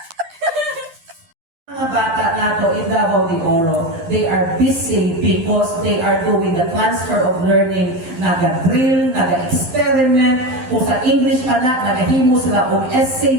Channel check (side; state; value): left; late; 11 ms